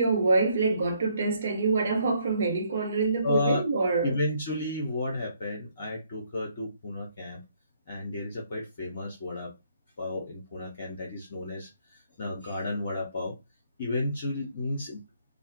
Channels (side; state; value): both; inverted; correlation -0.69